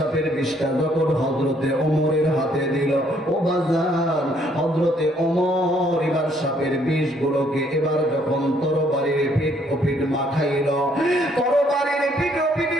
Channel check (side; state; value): both; normal; correlation 0.66